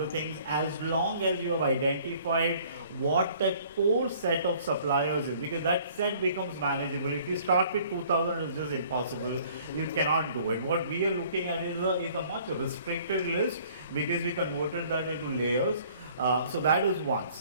things, as long as you have identified what that core set of suppliers is, because that set becomes manageable. If you start with 2,000, it's just impossible. You cannot do it. What we are looking at is a much restricted list because we converted that into layers. So that is one.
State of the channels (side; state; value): both; inverted; correlation -0.55